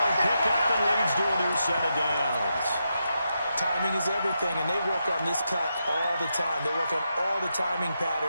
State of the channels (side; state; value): both; inverted; correlation -0.85